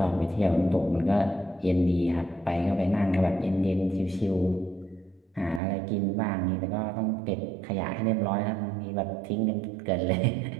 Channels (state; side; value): drops out; left; at 5.6 s